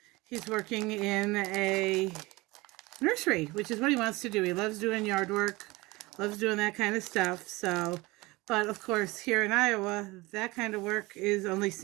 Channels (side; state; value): left; quieter; 22.2 dB